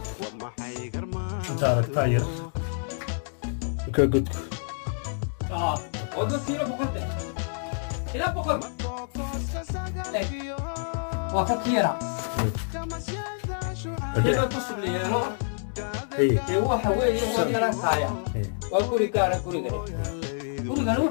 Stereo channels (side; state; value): right; silent; digital silence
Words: تارك تاير كقد وقلت له بقدر إلى بقدر وفكيرة كيف تصل لي هو حوالي هو دراسة وكل كارا كل gurigan